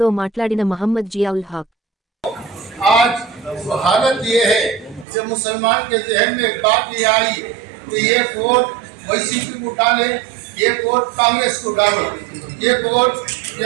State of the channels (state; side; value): drops out; left; at 5.1 s